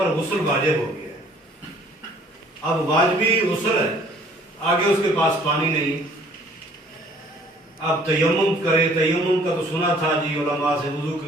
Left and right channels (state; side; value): normal; both; correlation 0.57